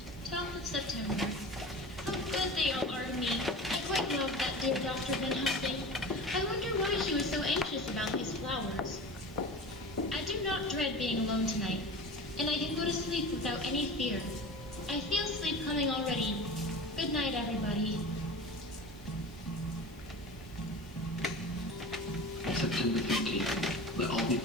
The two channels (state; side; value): noise; right; hiss, 26 dB below the sound